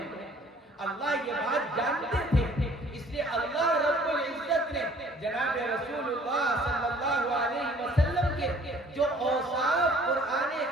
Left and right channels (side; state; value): both; normal; correlation 0.55